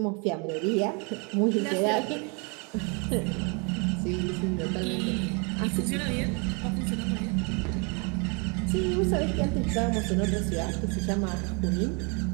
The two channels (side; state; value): left; quieter; 33.7 dB